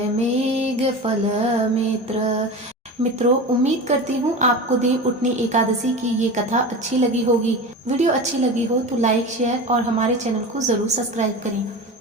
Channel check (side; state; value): both; normal; correlation 0.29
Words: मेघ फल मित्र। मित्रों, उम्मीद करती हूँ आपको देव उठनी एकादशी की ये कथा अच्छी लगी होगी। वीडियो अच्छी लगी हो तो लाइक, शेयर और हमारे चैनल को जरूर सब्सक्राइब करें।